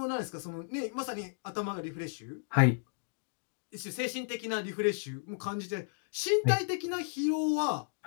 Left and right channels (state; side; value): silent; right; digital silence